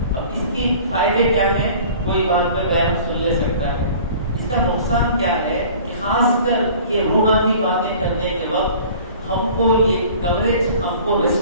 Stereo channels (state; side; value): inverted; both; correlation -0.47